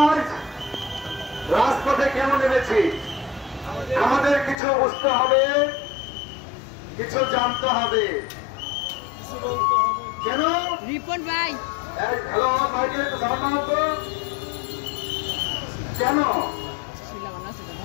রাজপথে কেন নেমেছি? আমাদের কিছু বুঝতে হবে, কিছু জানতে হবে। কেন রিপন ভাই হ্যালো ভাইকে একটু সালাম তো। কেন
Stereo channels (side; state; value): right; drops out; at 4.6 s